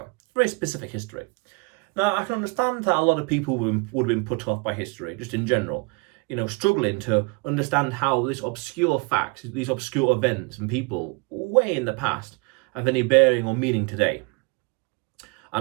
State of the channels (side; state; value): left; quieter; 30.8 dB